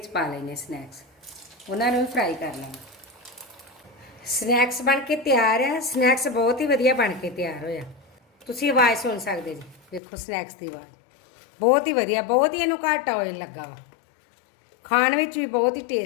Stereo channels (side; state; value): right; drops out; at 10.0 s